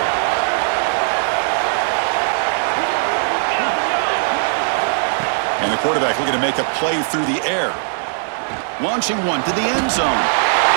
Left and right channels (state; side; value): silent; left; digital silence